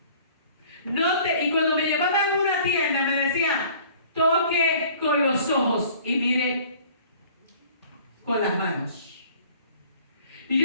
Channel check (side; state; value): both; inverted; correlation -0.51